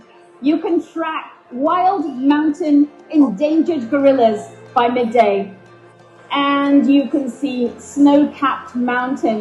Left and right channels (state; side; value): identical; both; correlation 1.00